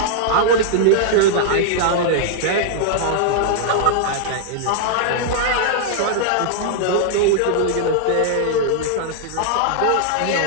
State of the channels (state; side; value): different; both; correlation -0.01